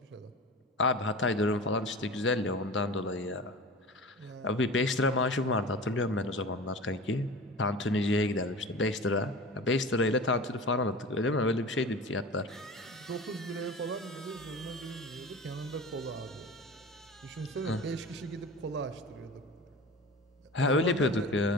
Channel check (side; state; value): both; normal; correlation 0.34